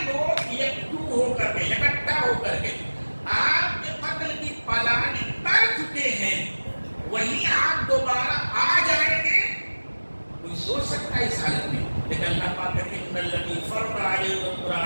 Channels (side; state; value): both; inverted; correlation -1.00